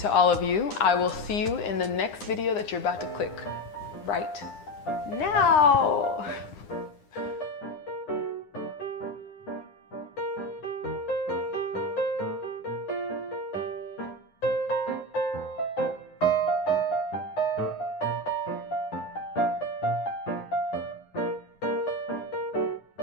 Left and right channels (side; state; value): right; late; 9.8 ms